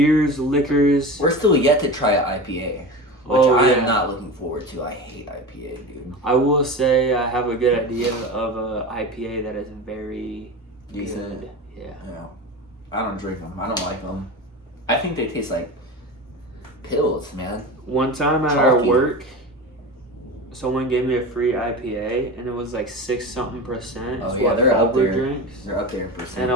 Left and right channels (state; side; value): normal; both; correlation 0.28